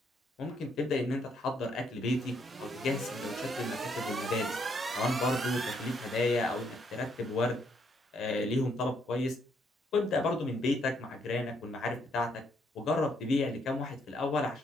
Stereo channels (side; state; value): both; normal; correlation 0.72